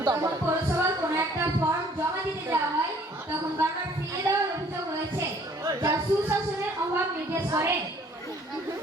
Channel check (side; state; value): both; normal; correlation 0.58